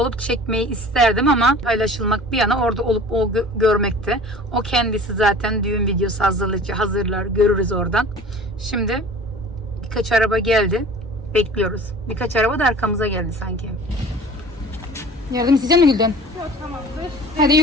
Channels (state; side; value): normal; both; correlation 0.43